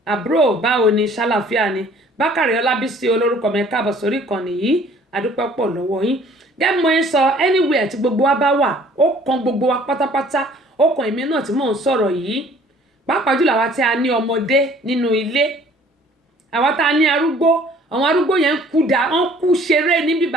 àbúrò báwo ni ṣàlàfíà ni bákàrẹ̀ ọlábísí olórúkọ mi káàbọ̀ sórí kan nìyí adúpẹ́ pọ̀ lọ́wọ́ yín gẹ́gẹ́ mo ń sọ anywhere tí gbogbo wa bá wà ó kan gbogbo wa pátápátá ó kan èmi náà tí mò ń sọ̀rọ̀ yìí pàápàá jùlọ àwa tí a ní ọmọdé nínú ilé àwa tá a ní arúgbó àwọn arúgbó yẹn wọ́n kú ṣeré níbí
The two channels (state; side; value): normal; both; correlation 0.55